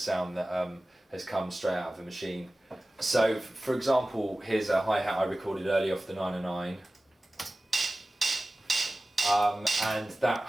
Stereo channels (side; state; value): both; normal; correlation 0.97